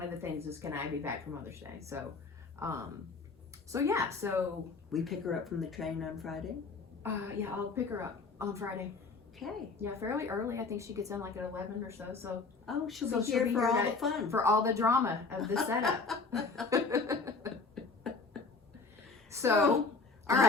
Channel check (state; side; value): quieter; right; 4.3 dB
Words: of the things is, can I be back for Mother's Day? So, so we pick her up from the train on Friday. Yeah, I'll pick her up on Friday. Okay. Yeah, fairly early. I think she gets in like at 11 or so. So she'll be here for all the fun, for all the drama of the setup. So. I